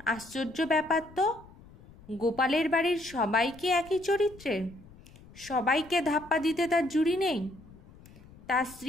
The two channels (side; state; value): left; noise; rumble, 22 dB below the sound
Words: আশ্চর্য ব্যাপার তো, গোপালের বাড়ির সবাইকে একই চরিত্রের, সবাইকে ধাপ্পা দিতে তার জুড়ি নেই। তার